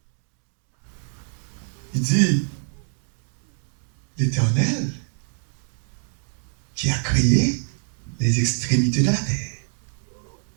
Il dit l'Éternel qui a créé les extrémités de la terre.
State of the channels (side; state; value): left; silent; 62 dB below the other